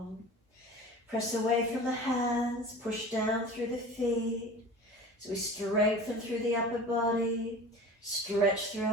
Press away from the hands. Push down through the feet. So we strengthen through the upper body. Stretch through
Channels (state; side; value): normal; both; correlation 0.39